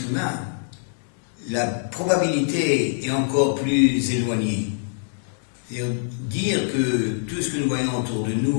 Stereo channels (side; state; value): right; silent; digital silence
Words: humain, la probabilité est encore plus éloignée. C'est-à-dire dire que tout ce que nous voyons autour de